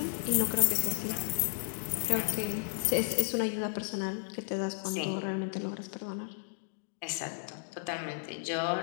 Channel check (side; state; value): right; silent; digital silence